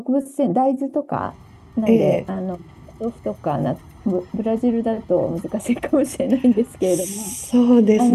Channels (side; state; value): both; identical; correlation 1.00